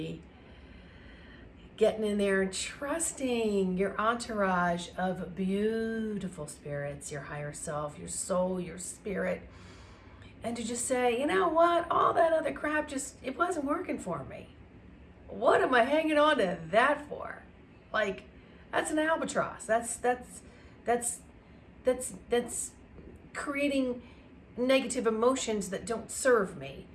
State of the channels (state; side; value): identical; both; correlation 1.00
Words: getting in there and trusting your entourage of beautiful spirits, your higher self, your soul, your spirit, and to just say, you know what, all that other crap it wasn't working for me. What am I hanging on to that for? Like, that's an albatross. That's creating negative emotions that don't serve me.